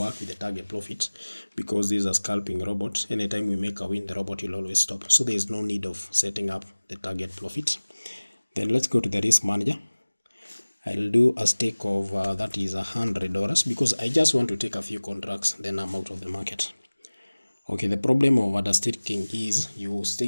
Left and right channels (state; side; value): inverted; both; correlation -1.00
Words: with the target profit because this is a scalping robot. Anytime we make a win, the robot will always stop. So there is no need of setting up the target profit. Then let's go to the risk manager. I'll do a stake of that is $100 because I just want to take a few contracts, then I'm out of the market. Okay, the problem of understaking is you stay